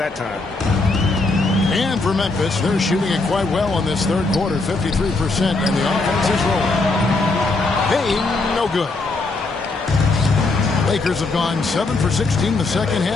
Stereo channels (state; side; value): quieter; right; 3.5 dB